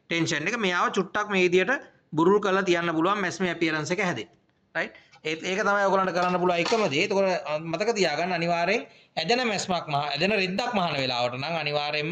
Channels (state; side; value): identical; both; correlation 1.00